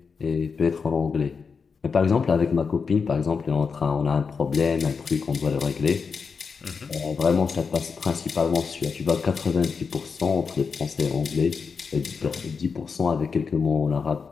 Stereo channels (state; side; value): quieter; right; 5.4 dB